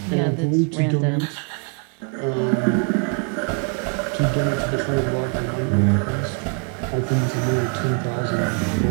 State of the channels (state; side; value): quieter; left; 35.3 dB